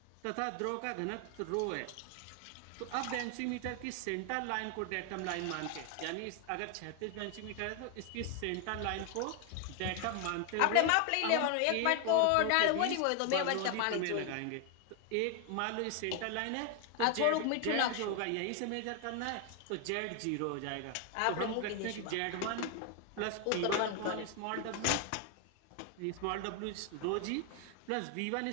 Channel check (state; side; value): different; both; correlation 0.01